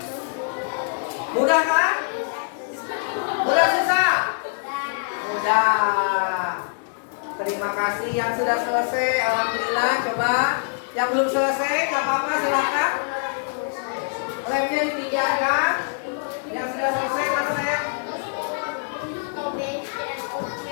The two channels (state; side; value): silent; right; digital silence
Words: Mudah kan? Mudah susah? Mudah. Terima kasih yang sudah selesai. Alhamdulillah. Coba. Yang belum selesai, nggak apa-apa, silakan. Lemnya dipinjamkan. Yang sudah selesai mana saya?